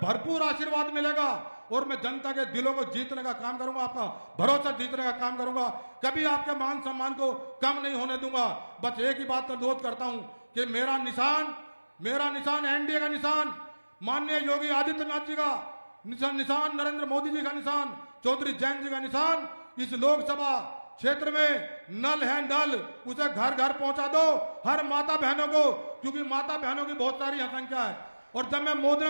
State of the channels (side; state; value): both; inverted; correlation -1.00